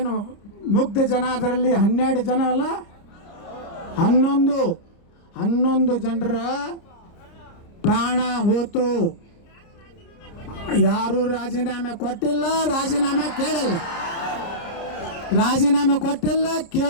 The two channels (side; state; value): right; late; 30 ms